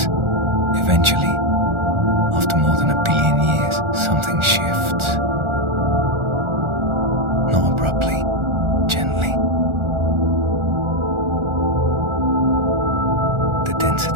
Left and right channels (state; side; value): late; left; 1.4 ms